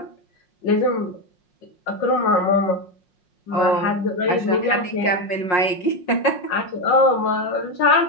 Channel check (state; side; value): late; right; 5.5 ms